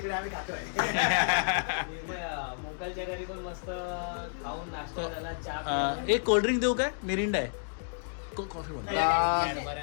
आम्ही खातोय. मोकलच्या घरी पण मस्त खाऊन नाश्ता झाला, चहा. एक कोल्ड्रिंक देऊ काय? मिरिंडा आहे. इतकं कॉफी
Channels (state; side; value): silent; right; digital silence